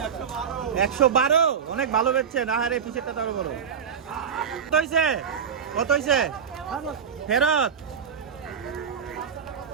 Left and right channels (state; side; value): quieter; left; 7.3 dB